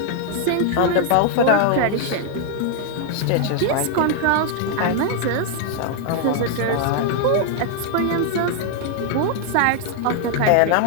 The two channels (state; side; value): different; both; correlation 0.00